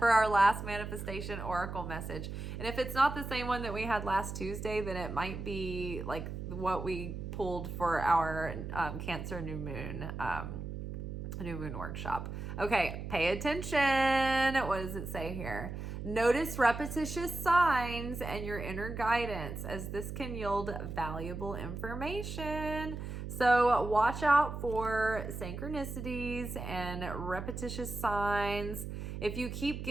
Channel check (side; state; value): right; noise; hum, 6 dB below the sound